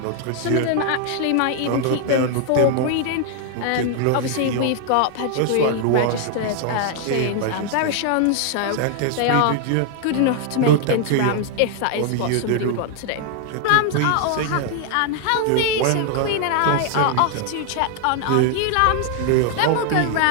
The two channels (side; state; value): both; different; correlation 0.00